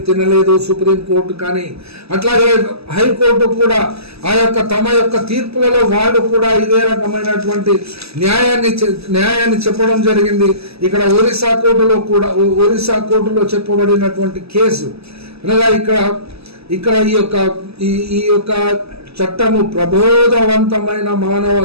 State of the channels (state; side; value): late; left; 0.78 ms